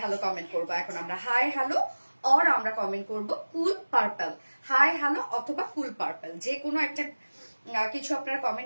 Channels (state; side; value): inverted; both; correlation -1.00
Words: হ্যালো কমেন্ট করবো এখন আমরা, হাই হ্যালো অর আমরা কমেন্ট করব কুল পার্পল, হাই হ্যালো অথবা কুল পার্পল, যে কোনো একটা কিছু আপনারা